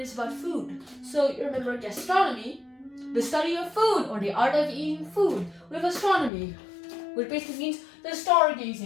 about food. So you remember gastronomy, the study of food or the art of eating food, with astronomy, which basically means the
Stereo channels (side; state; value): right; drops out; at 6.3 s